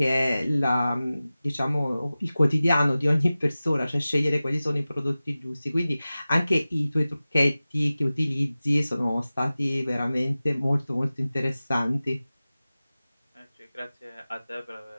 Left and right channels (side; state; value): both; inverted; correlation -0.97